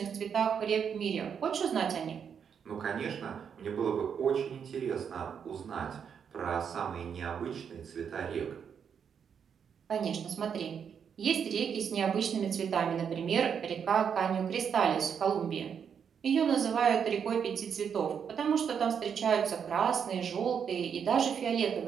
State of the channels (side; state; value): left; quieter; 7.3 dB